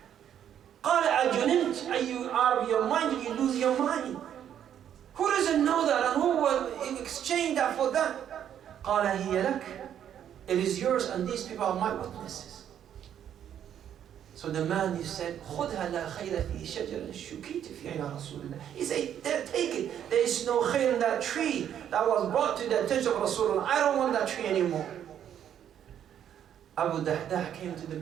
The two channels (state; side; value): quieter; left; 9.7 dB